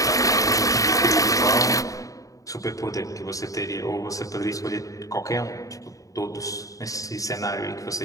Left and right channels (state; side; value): late; right; 0.16 ms